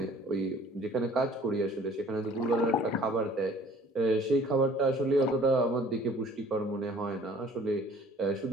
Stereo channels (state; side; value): normal; both; correlation 0.52